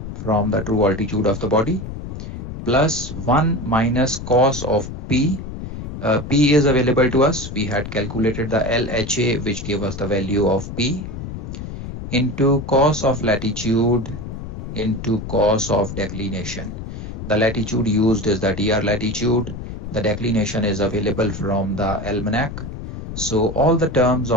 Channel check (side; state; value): left; noise; rumble, 8 dB below the sound